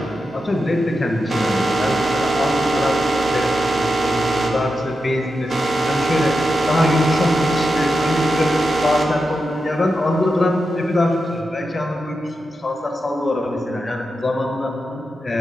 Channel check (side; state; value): both; normal; correlation 0.88